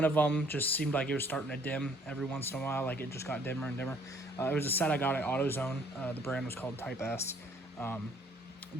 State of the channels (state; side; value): normal; both; correlation 0.61